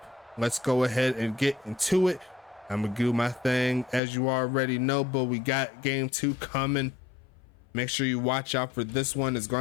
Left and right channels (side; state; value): right; drops out; at 4.0 s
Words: Let's go ahead and get into it. I'm going to do my thing as you already know, but we got game 2 coming. Make sure you watch out for this one. It's